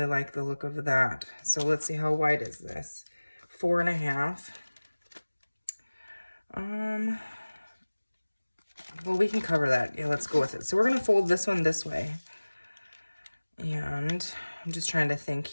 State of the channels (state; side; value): inverted; both; correlation -1.00